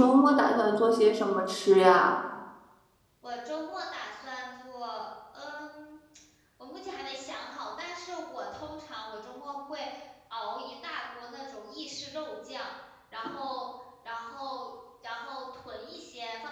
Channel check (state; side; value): identical; both; correlation 1.00